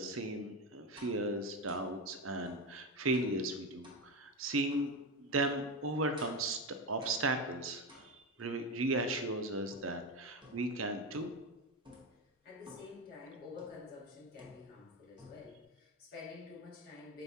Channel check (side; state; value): both; normal; correlation 0.16